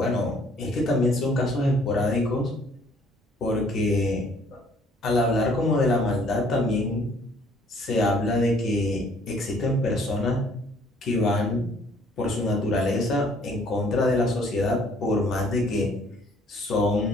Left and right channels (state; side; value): normal; both; correlation 0.60